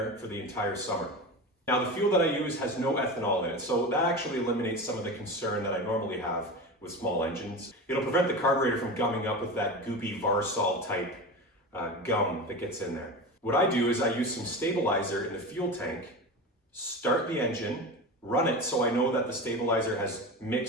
for the entire summer. Now the fuel that I use has no ethanol in it, so that actually eliminates some of the concern that I normally have with small engines. It'll prevent the carburetor from gumming up with that goopy Varsol type gum that gets in there. What I do is I use some stabilizer in the fuel tank, start the engine, run it so I know that the stabilizer has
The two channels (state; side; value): normal; both; correlation 0.26